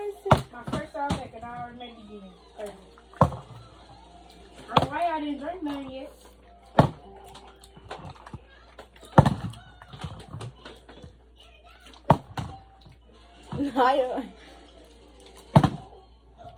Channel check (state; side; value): identical; both; correlation 1.00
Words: My first time back and I already made it again. I don't know why I didn't drink none yet.